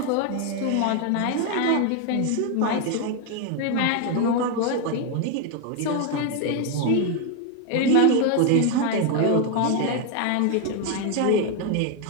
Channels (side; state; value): both; different; correlation 0.01